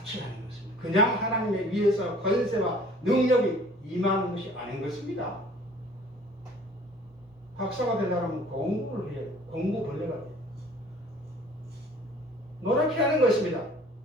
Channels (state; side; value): normal; both; correlation 0.52